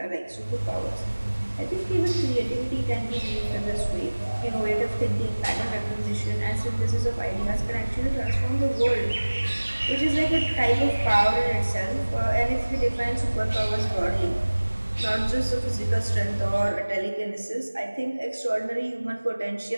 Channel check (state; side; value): inverted; both; correlation -1.00